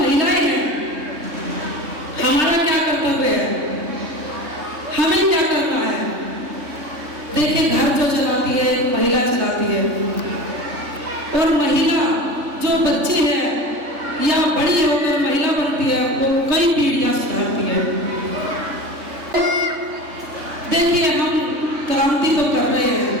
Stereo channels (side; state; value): left; late; 3.3 ms